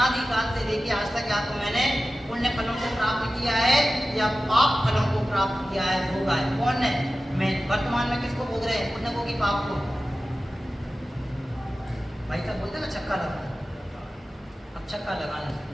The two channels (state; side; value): normal; both; correlation 0.95